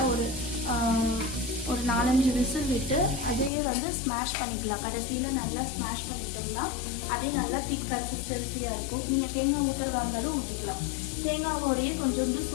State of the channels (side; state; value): right; drops out; at 3.5 s